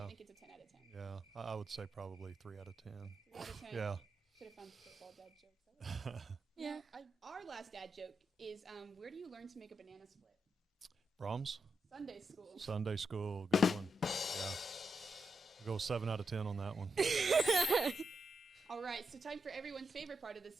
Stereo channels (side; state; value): both; normal; correlation 0.85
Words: think it's a 10 out of 10. Yeah, I would say probably 3 out of 10. 3 out of 10. Yeah. Could have found football dad jokes. That was- Yeah. Our last dad joke is, where do you learn to make a banana split? Brahms? Sunday school. Sunday school, good one. Yeah. We'll go 7 out of 10 on that one. All right, so time for everyone's favorite part of this